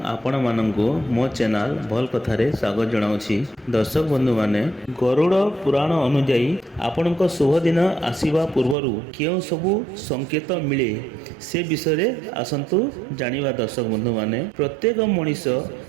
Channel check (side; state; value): left; drops out; at 8.8 s